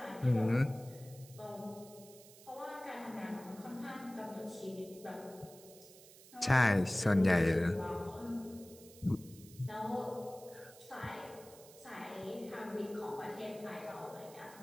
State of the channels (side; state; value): right; noise; hiss, 20 dB below the sound